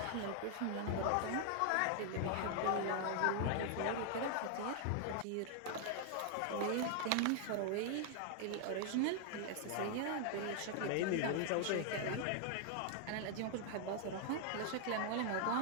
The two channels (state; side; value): different; both; correlation 0.00